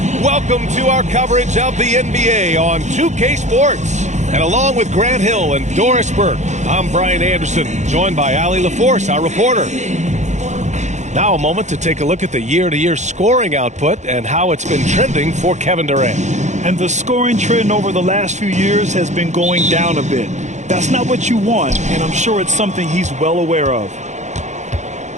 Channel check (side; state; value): left; late; 0.34 ms